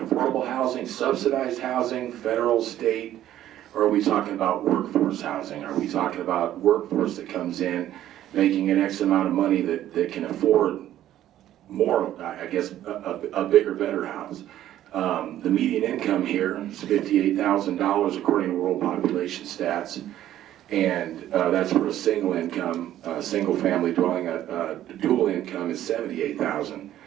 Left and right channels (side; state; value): left; quieter; 12.5 dB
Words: affordable housing, subsidized housing, federal, state, or are we talking about workforce housing? Are we talking about workforce that comes in making an X amount of money that can afford more, I guess, a bigger, better house? The median income here is $58,000 according to World Population Stats. And that's for a single income, single family dwelling. Dual income is $78,000.